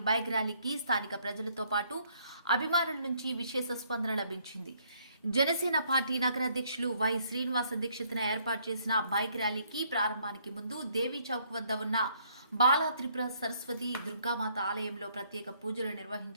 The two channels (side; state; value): both; inverted; correlation -0.67